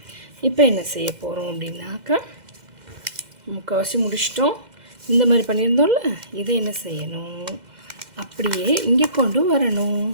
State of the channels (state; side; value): late; left; 2.0 ms